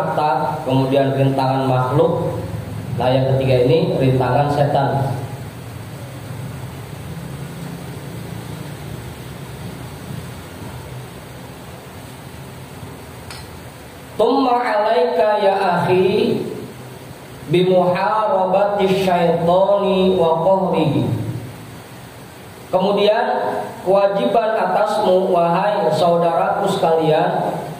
kemudian rintangan makhluk, nah yang ketiga ini rintangan setan. Tumma alaika ya akhi bimuharabati syaitani wa qahrihi. Kemudian kewajiban atasmu wahai saudaraku sekalian,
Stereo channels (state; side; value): identical; both; correlation 1.00